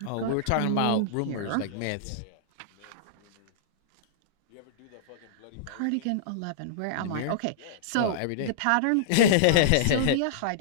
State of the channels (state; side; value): different; both; correlation -0.02